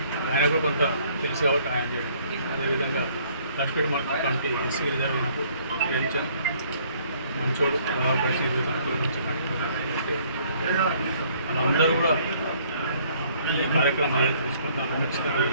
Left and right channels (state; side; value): inverted; both; correlation -0.61